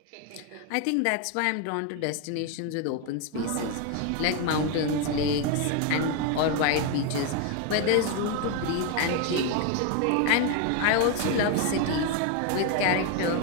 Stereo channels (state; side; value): different; both; correlation 0.01